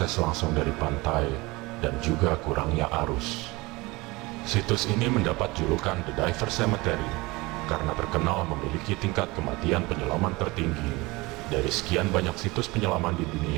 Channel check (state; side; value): quieter; left; 22.9 dB